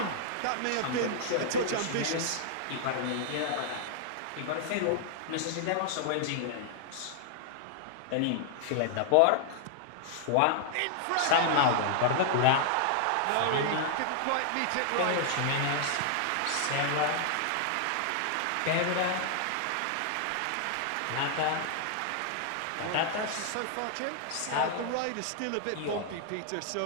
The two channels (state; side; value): different; both; correlation 0.00